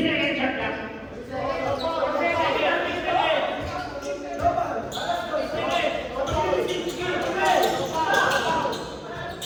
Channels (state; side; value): identical; both; correlation 1.00